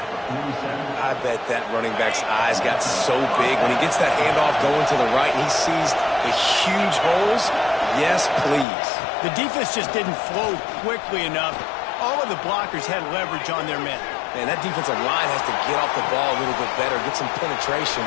I bet that running back's eyes got so big when he gets that handoff going to the right and he sees the huge holes. Yes, please. The defense just didn't flow quickly enough. All of the blockers had leverage on their men. Man, that defensive line has to get off the ball a little bit better, get some penetration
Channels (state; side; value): drops out; right; at 8.7 s